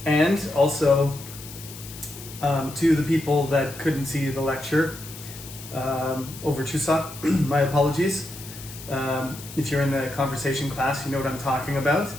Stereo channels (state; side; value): noise; left; hiss, 14 dB below the sound